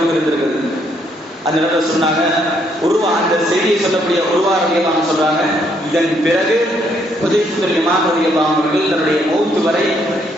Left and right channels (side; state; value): both; normal; correlation 0.71